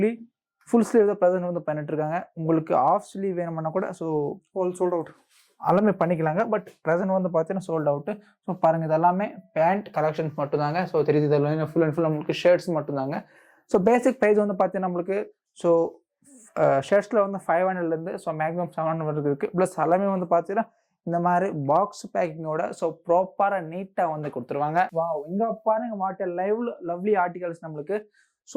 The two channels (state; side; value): identical; both; correlation 1.00